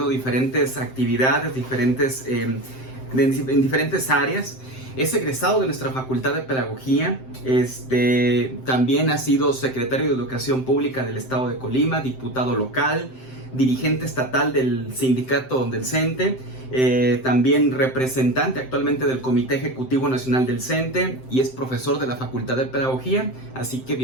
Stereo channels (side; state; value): right; late; 7.7 ms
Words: diferentes actividades, en diferentes áreas. Es egresado de nuestra Facultad de Pedagogía, también ha sido secretario de Educación Pública del Estado de Colima, diputado local, dirigente estatal del sindicato del CENTE, también representante actualmente del Comité Ejecutivo Nacional del CENTE y es profesor de la Facultad de Pedagogía. Así que